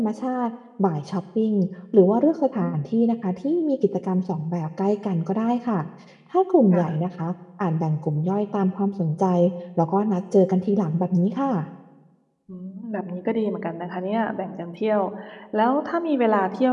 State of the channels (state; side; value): identical; both; correlation 1.00